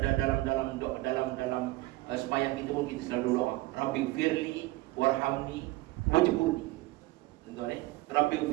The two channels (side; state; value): left; quieter; 19.9 dB